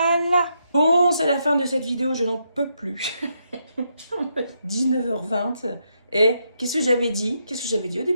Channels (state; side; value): inverted; both; correlation -0.80